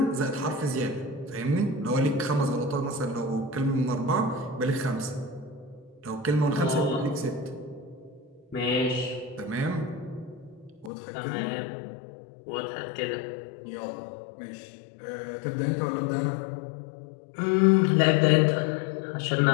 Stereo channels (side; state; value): right; drops out; at 10.9 s